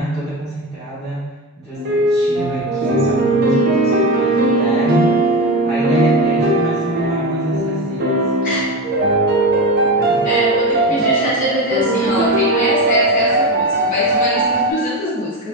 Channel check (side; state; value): both; normal; correlation 0.19